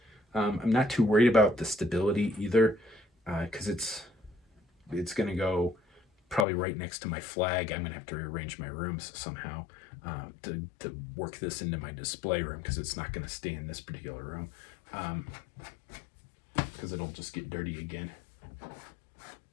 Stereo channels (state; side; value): drops out; right; at 6.5 s